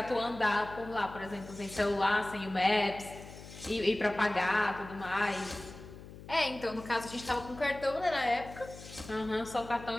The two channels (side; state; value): left; noise; hum, 15 dB below the sound